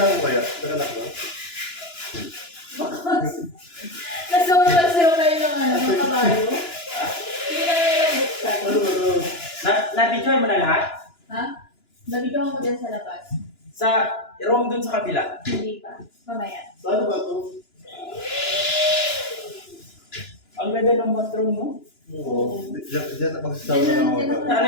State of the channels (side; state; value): right; late; 2.9 ms